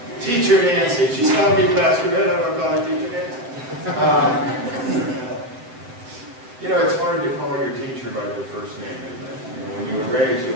Teacher Nancy. She's calling me Pastor Ed, I'm going to call her Teacher Nancy. You know, it's hard to call your teacher by their first name, isn't it? You know, when you were raised, you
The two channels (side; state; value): left; late; 7.9 ms